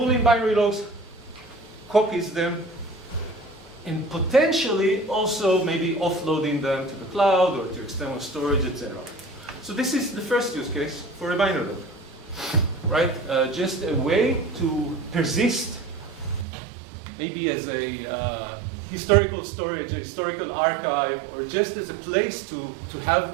binary logs, copies them, and potentially also maybe offloading them to the cloud or to external storage, etc. So this is the first use case for a binary log, right? Just a way to persist, maybe as a historical storage, a historical archive, or just as a place to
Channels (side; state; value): left; drops out; at 16.4 s